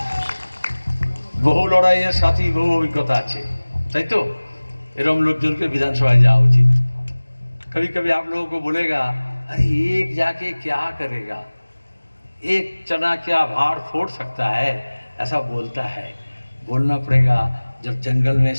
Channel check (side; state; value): both; inverted; correlation -1.00